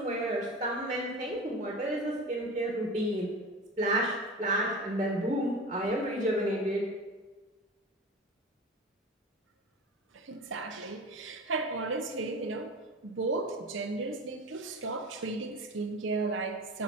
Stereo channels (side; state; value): both; normal; correlation 0.32